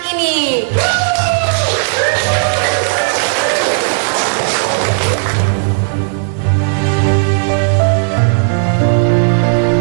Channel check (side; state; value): left; silent; digital silence